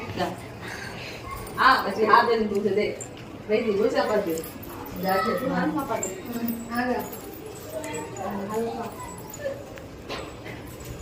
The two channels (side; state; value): both; identical; correlation 1.00